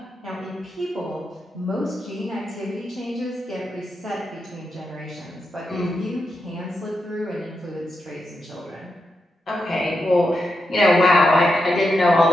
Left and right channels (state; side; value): normal; both; correlation 0.86